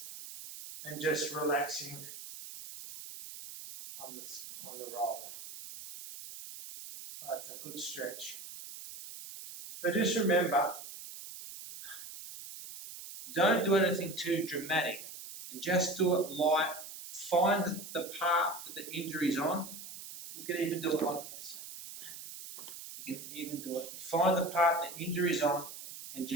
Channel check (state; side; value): noise; right; hiss, 12 dB below the sound